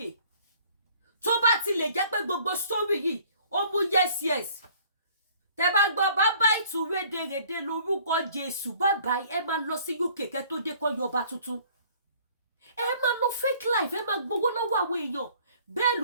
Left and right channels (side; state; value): both; inverted; correlation -0.55